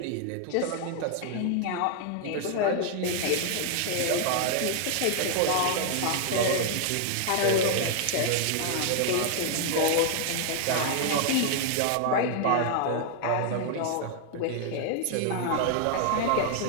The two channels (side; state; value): both; different; correlation 0.00